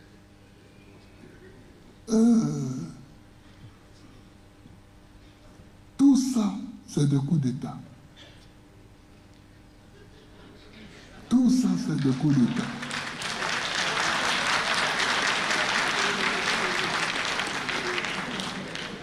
tout ça, c'est des coups d'État. Tout ça, c'est des coups d'État.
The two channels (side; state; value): both; identical; correlation 1.00